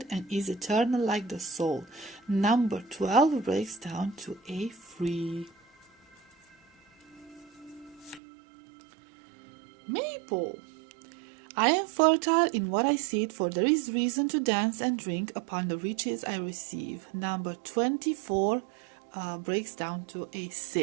and is eternal like the soul. Number 12 breaks down to a 3. Maple. I am fertile in what I seed, for there is reason to dance and drink upon the riches I receive. Number 24 breaks down to a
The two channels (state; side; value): drops out; left; at 8.2 s